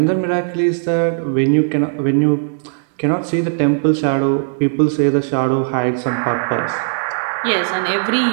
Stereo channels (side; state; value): left; silent; digital silence